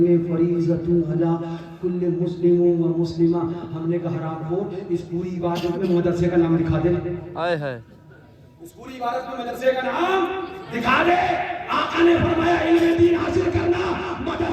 فریضۃ علی کل مسلم و مسلمہ. ہم نے کہا حرام خور اس پوری عبادت میں مدرسے کا نام دکھا دے. ہائے ہائے اس پوری عبادت میں مدرسے کا نام دکھا دے. آقا نے فرمایا علم دین حاصل کرنا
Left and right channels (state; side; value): identical; both; correlation 1.00